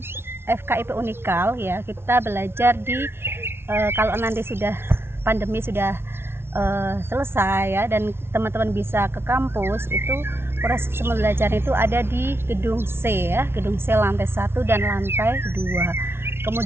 FKIP Unikal ya, kita belajar di kalau nanti sudah pandemi sudah selesai ya, dan teman-teman bisa ke kampus, itu proses pembelajaran itu ada di gedung C ya, gedung C lantai 1 dan lantai 2.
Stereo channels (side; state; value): left; late; 0.12 ms